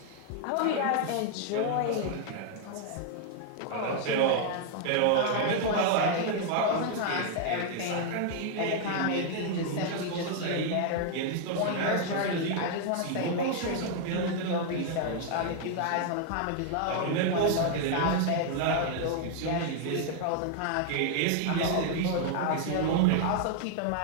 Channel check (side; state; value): both; different; correlation 0.00